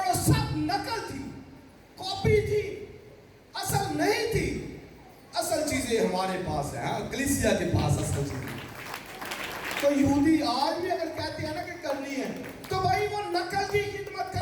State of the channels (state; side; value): identical; both; correlation 1.00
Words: وہ سب نقل تھی، کاپی تھی، اصل نہیں تھی. اصل چیزیں ہمارے پاس ہیں، کلیسیا کے پاس اصل چیزیں. تو یہودی آج بھی اگر کہتے ہیں نا کہ کرنی ہے تو بھائی وہ نقل کی خدمت